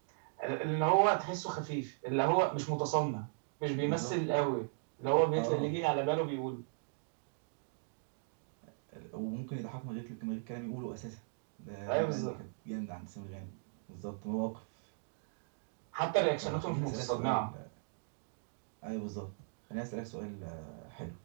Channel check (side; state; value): left; silent; digital silence